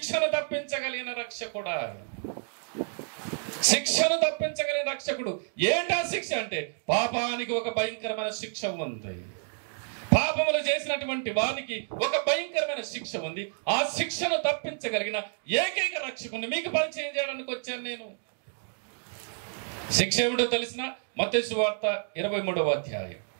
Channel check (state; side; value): silent; left; 58 dB below the other